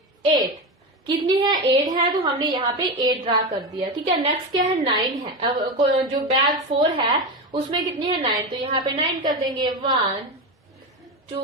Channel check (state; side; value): normal; both; correlation 0.18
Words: 8, कितनी है, 8 है, तो हमने यहाँ पे 8 ड्रा कर दिया, ठीक है। नेक्स्ट क्या है, 9 है। अब जो बैग 4 है उसमें कितनी है, 9, तो यहाँ पे 9 कर देंगे। 1, 2,